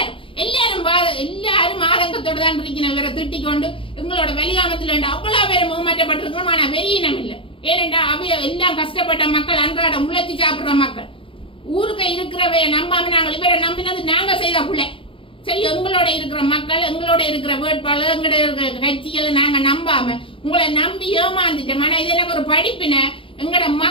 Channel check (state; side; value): late; right; 0.25 ms